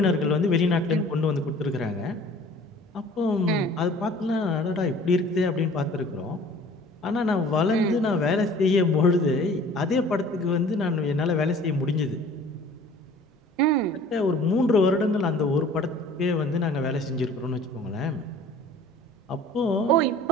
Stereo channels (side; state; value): both; normal; correlation 0.49